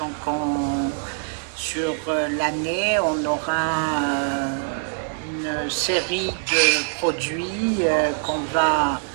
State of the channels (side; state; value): left; silent; 58 dB below the other